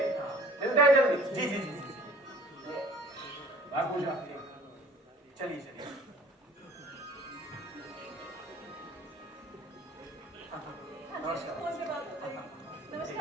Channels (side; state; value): both; normal; correlation 0.50